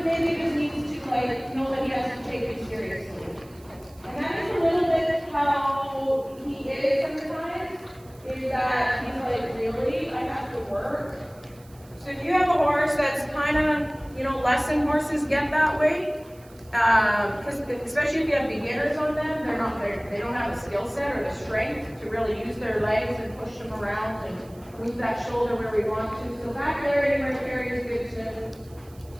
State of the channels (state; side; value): noise; right; hiss, 27 dB below the sound